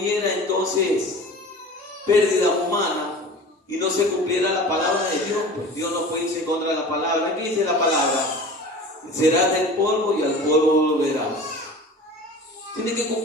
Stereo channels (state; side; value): normal; both; correlation 0.38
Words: entonces pérdida humana y no se cumpliera la palabra de Dios. Pues Dios no puede irse en contra de la palabra. ¿Qué dice la palabra? Serás del polvo y al polvo volverás. Tiene que